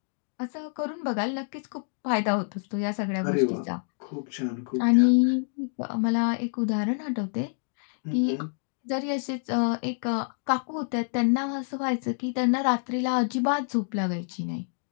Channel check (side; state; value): right; silent; 60 dB below the other